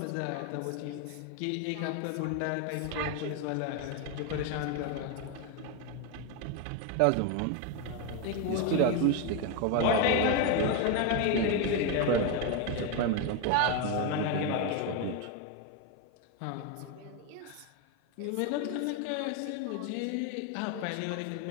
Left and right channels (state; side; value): different; both; correlation 0.02